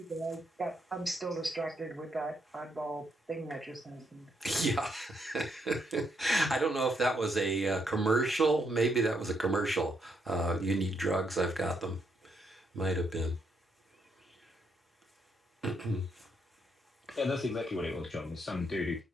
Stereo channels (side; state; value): both; normal; correlation 0.76